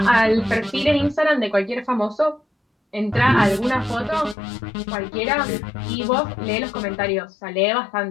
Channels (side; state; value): right; drops out; at 4.4 s